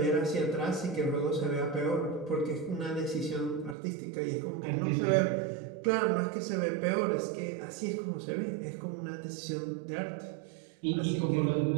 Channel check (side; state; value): left; drops out; at 3.8 s